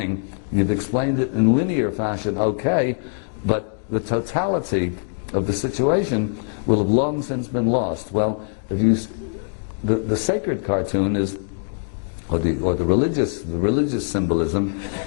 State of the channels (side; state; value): right; silent; digital silence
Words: You've explained it in linear fashion, okay, but the totality of the situation will have long since been lost. Well, if you, the sacred cartoon is, or the religious symbolism